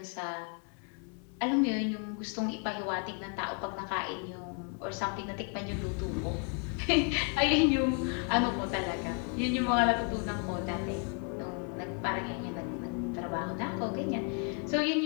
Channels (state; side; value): quieter; right; 39.4 dB